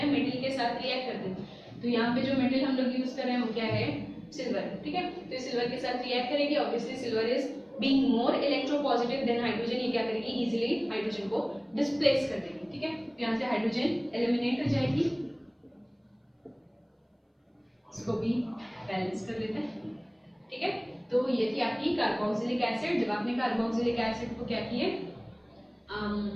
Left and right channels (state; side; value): identical; both; correlation 1.00